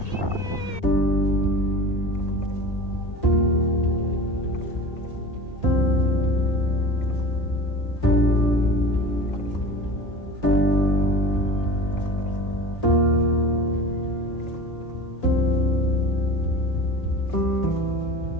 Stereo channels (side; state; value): right; late; 1.8 ms